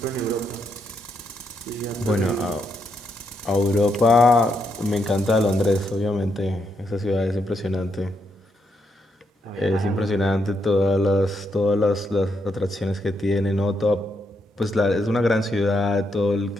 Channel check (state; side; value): normal; both; correlation 0.79